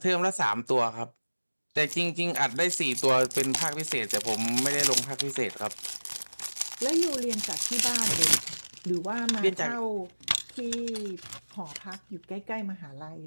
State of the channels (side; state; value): both; inverted; correlation -1.00